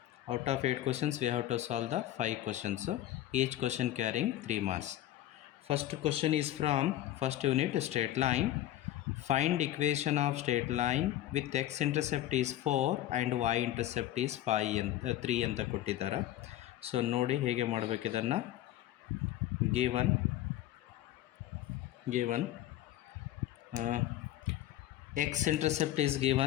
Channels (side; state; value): right; quieter; 13.5 dB